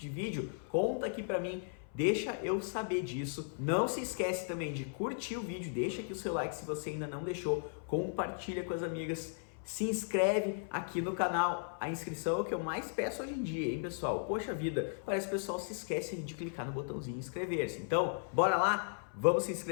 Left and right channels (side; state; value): right; silent; 54 dB below the other